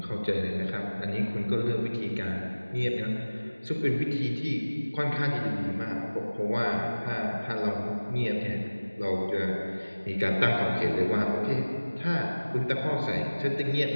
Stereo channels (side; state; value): both; inverted; correlation -1.00